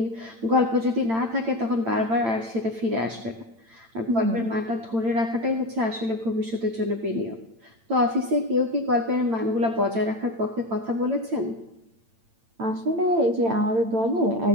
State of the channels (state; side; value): late; left; 8.9 ms